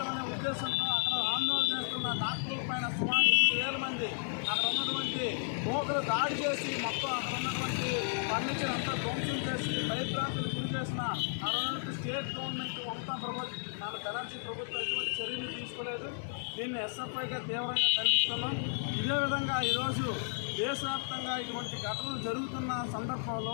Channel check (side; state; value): right; silent; digital silence